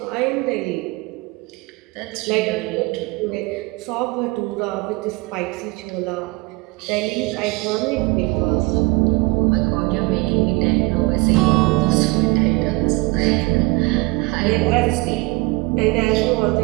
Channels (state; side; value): quieter; left; 24.3 dB